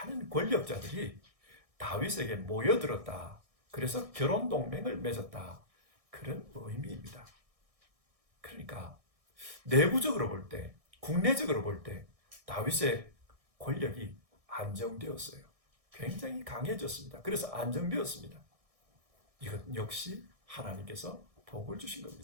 권력자들이 다윗에게 모여들었다, 그래서 결혼 동맹을 맺었다, 그런 의미입니다. 그러니까 내부적으로 볼 때, 국내적으로 볼 때 다윗의 권력이 안정되었어요. 굉장히 강해졌습니다. 그래서 안정되었습니다. 이것 역시 하나님께서 복을 주신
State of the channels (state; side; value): late; left; 1.6 ms